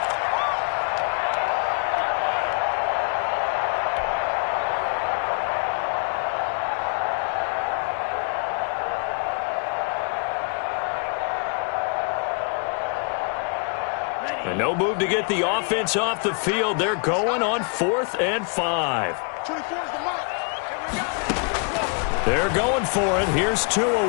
And no move to get the offense off the field. They're going on 4th and 5. They're going for it. Here's Tua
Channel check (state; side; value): quieter; right; 39.0 dB